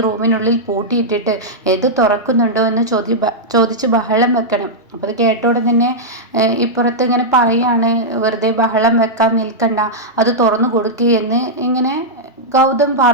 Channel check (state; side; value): normal; both; correlation -0.07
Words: റൂമിനുള്ളിൽ പൂട്ടിയിട്ടിട്ട് ഇത് തുറക്കുന്നുണ്ടോ എന്ന് ചോദിച്ച് ബഹളം വെക്കണം. അപ്പോൾ അത് കേട്ടോടെ തന്നെ ഇപ്പുറത്ത് ഇങ്ങനെ പറയാണ്, വെറുതെ ബഹളം വെക്കാൻ നിൽക്കണ്ട, അത് തുറന്നു കൊടുക്കുകയെന്ന് ഇങ്ങനെ ഗൗതം